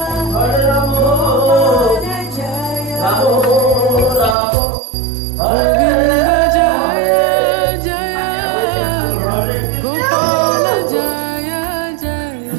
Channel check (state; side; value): drops out; left; at 4.4 s